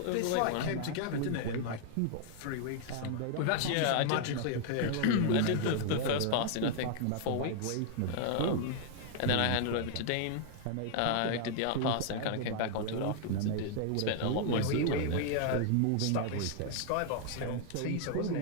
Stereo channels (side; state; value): both; different; correlation 0.00